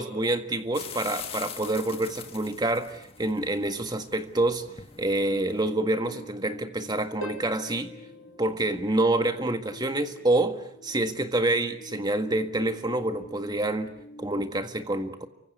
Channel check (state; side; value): normal; both; correlation 0.52